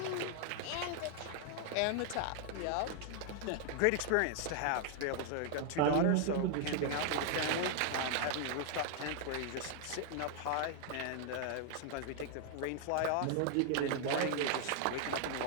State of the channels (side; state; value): both; different; correlation 0.00